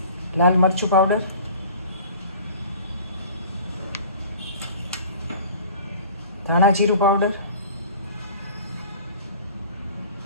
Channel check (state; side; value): inverted; both; correlation -0.44